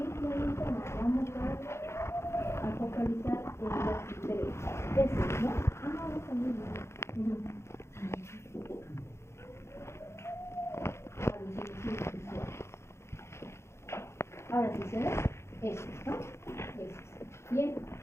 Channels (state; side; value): late; right; 0.13 ms